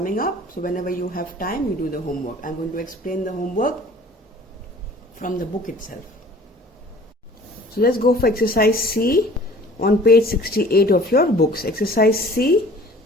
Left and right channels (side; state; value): both; normal; correlation 0.49